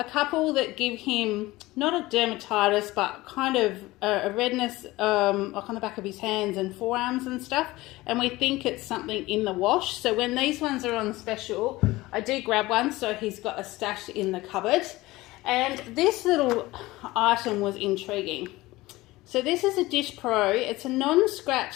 couple that give him not a dermatitis, but kind of a redness like on the back of his hands and forearms and stuff. And we think it's something in the wash. So when these ones are on special, I do grab one, so he's got a stash in the cupboard. And this little item was intriguing. So this is a Dish Pro. It's a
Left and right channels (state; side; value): quieter; right; 19.2 dB